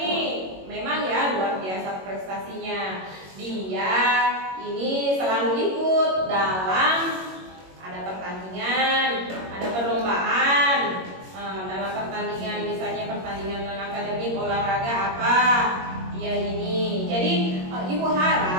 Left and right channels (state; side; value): late; left; 21 ms